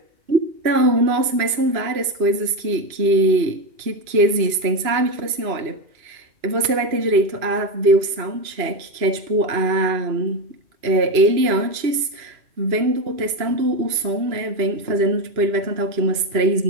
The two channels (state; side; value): late; left; 2.9 ms